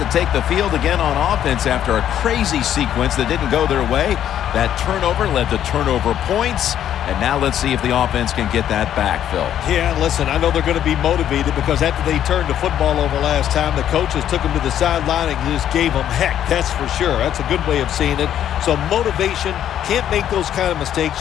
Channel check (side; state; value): right; quieter; 10.5 dB